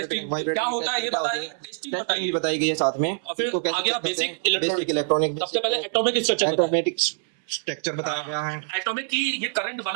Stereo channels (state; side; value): silent; left; 62 dB below the other